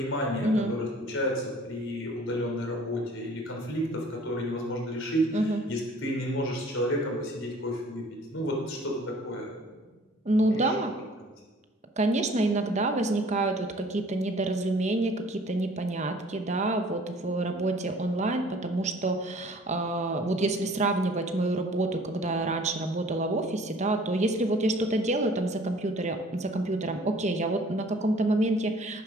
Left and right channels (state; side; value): normal; both; correlation 0.52